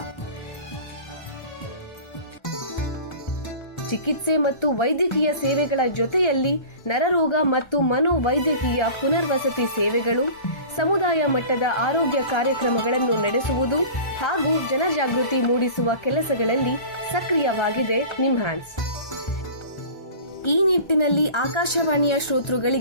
ಚಿಕಿತ್ಸೆ ಮತ್ತು ವೈದ್ಯಕೀಯ ಸೇವೆಗಳ ಜೊತೆಯಲ್ಲಿ ನರರೋಗ ಮತ್ತು ಮನೋವೈದ್ಯಕೀಯ ಪುನರ್ವಸತಿ ಸೇವೆಗಳು, ಸಮುದಾಯ ಮಟ್ಟದ ಆರೋಗ್ಯ ಕಾರ್ಯಕ್ರಮಗಳನ್ನು ನಡೆಸುವುದು ಹಾಗೂ ಜನಜಾಗೃತಿ ಮೂಡಿಸುವ ಕೆಲಸಗಳಲ್ಲಿ ಸಕ್ರಿಯವಾಗಿದೆ ನಿಮ್ಹಾನ್ಸ್. ಈ ನಿಟ್ಟಿನಲ್ಲಿ ಆಕಾಶವಾಣಿಯ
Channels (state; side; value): late; right; 1.3 ms